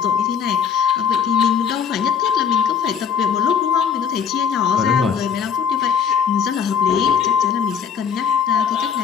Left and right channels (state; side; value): quieter; right; 7.4 dB